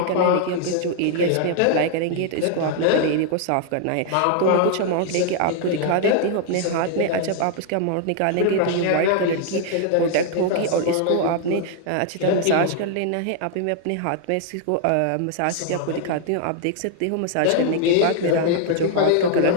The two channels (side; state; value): both; different; correlation 0.00